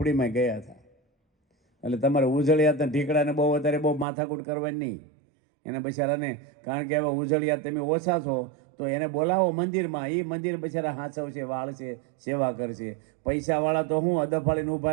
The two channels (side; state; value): left; drops out; at 4.0 s